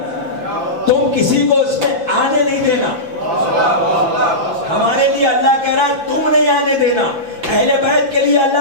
تم کسی کو اس میں آنے نہیں دینا. ہمارے لیے اللہ کہہ رہا ہے تم نہیں آنے دینا, اہل بیت کے لیے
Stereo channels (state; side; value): late; left; 5.9 ms